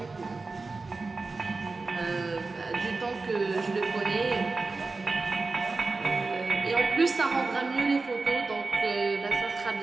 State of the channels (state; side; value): quieter; left; 3.8 dB